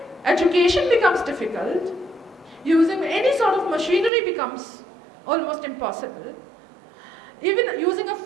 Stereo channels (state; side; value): drops out; left; at 4.1 s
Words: Education becomes difficult. Using any sort of machinery becomes almost impossible. Even using a